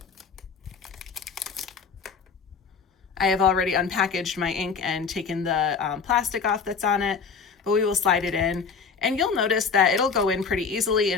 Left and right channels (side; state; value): right; quieter; 5.6 dB